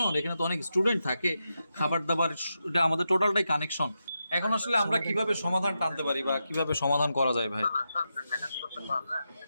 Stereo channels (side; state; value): both; inverted; correlation -0.87